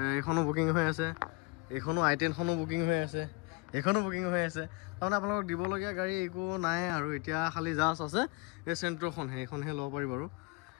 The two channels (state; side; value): quieter; right; 26.2 dB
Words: এখনো বুকিং হৈ আছে এখনো i10 খনো বুকিং হৈ আছে এখনো বুকিং হৈ আছে তাৰমানে আপোনালোকক দিবলগীয়া গাড়ী একো নাই আৰু এতিয়া খালি জাষ্ট আছে এই চেন্ট্ৰখন সেইখনহে ল'ব পাৰিব